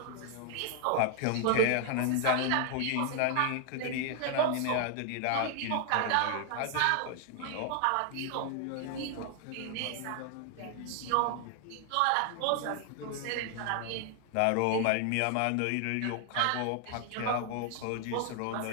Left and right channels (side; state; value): both; different; correlation 0.00